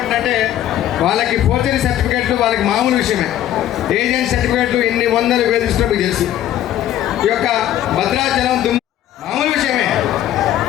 వాళ్ళకి ఫోర్జరీ సర్టిఫికేట్లు వాళ్ళకి మామూలు విషయమే. ఏజెంట్ సర్టిఫికేట్లు ఎన్ని వందలు వేధిస్తున్నా మీకు తెలుసు. ఈ యొక్క భద్రాచలం మామూలు విషయమే.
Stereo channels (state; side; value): quieter; right; 12.1 dB